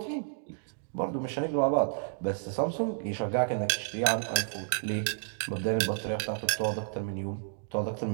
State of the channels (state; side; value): silent; left; digital silence